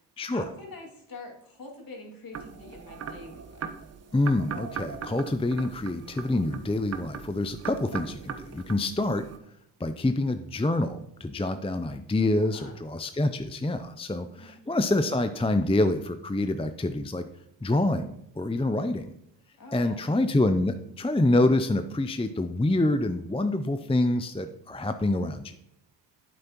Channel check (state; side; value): normal; both; correlation 0.78